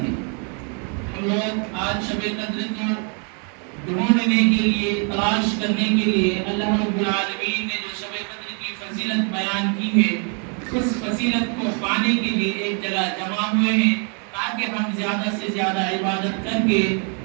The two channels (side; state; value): left; quieter; 39.4 dB